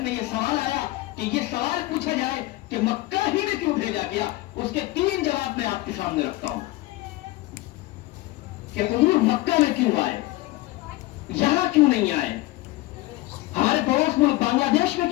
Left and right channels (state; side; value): quieter; right; 19.1 dB